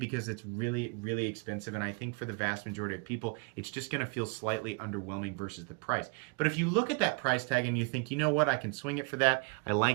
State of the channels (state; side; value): quieter; left; 33.7 dB